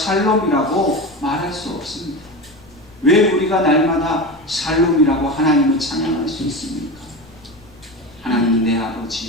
말할 수 없습니다. 왜 우리가 날마다 샬롬이라고 하나님을 찬양할 수 있습니까? 하나님은 내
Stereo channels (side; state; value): left; noise; rumble, 26 dB below the sound